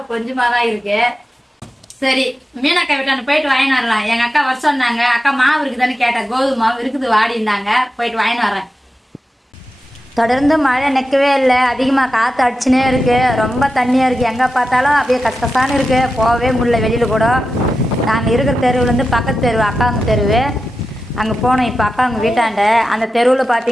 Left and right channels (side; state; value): both; normal; correlation 0.91